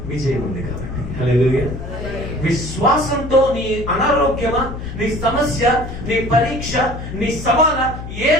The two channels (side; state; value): left; noise; hum, 9 dB below the sound